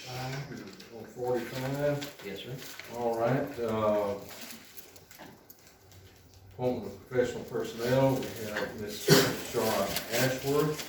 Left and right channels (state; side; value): identical; both; correlation 1.00